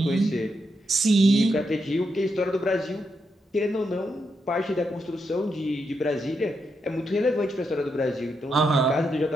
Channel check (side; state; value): both; normal; correlation 0.82